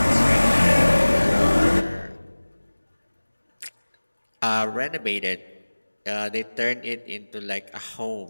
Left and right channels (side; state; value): both; inverted; correlation -1.00